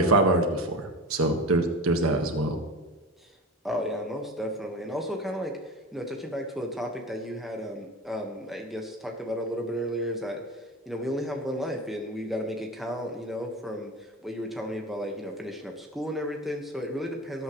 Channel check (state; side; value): normal; both; correlation 0.29